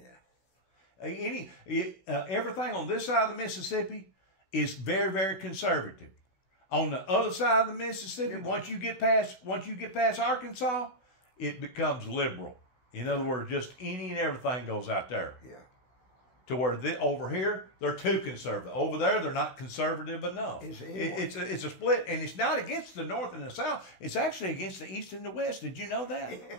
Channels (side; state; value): right; late; 16 ms